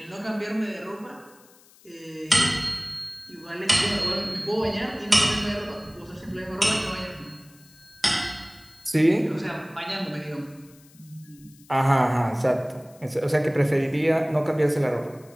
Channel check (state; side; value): noise; left; hiss, 27 dB below the sound